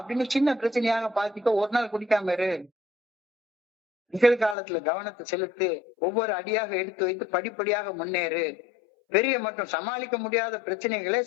அப்படின்னு சின்ன பிரச்சனையாக பார்த்துக்க. ஒரு நாள் குடிக்காம இரு, நிகழ்காலத்துல கவனத்தை செலுத்து, ஒவ்வொரு அடியாக எடுத்து வைத்து படிப்படியாக முன்னேறு. பெரிய மற்றும் சமாளிக்க முடியாத பிரச்சனைகளை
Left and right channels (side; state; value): right; drops out; at 4.5 s